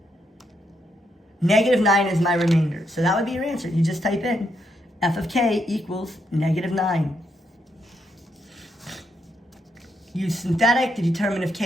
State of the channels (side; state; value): both; normal; correlation 0.79